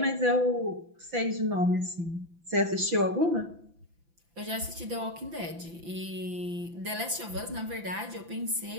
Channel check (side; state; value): left; late; 5.9 ms